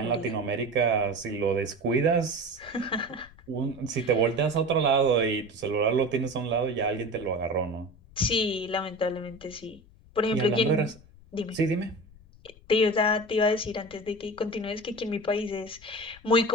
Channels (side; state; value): left; noise; rumble, 24 dB below the sound